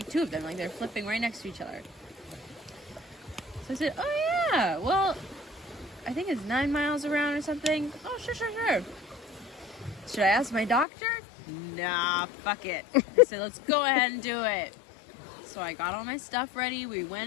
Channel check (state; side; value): drops out; right; at 10.9 s